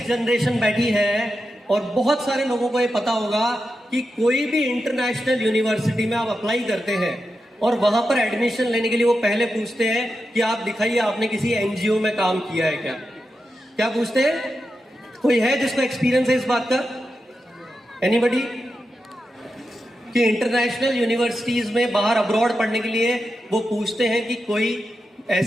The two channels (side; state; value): both; normal; correlation 0.89